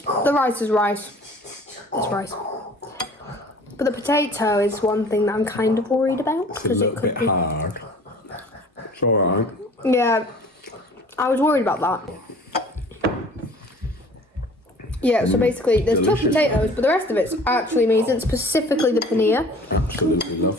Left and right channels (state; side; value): normal; both; correlation 0.48